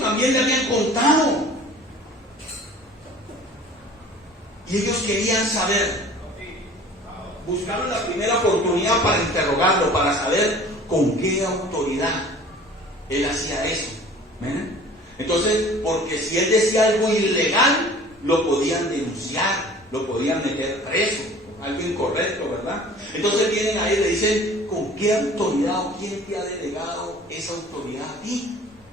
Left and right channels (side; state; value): both; normal; correlation 0.46